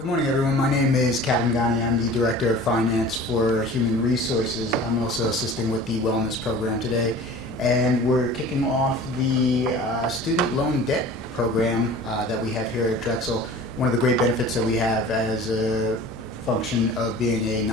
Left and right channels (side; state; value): both; normal; correlation 0.42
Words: morning, everyone. My name is Kevin Ghani. I'm the Director of Finance for Human Resources. I'm also assisting with the Wellness Program today. And we're kicking off the student loan debt program that we have here at Drexel. One of the great benefits that we have as a function of being a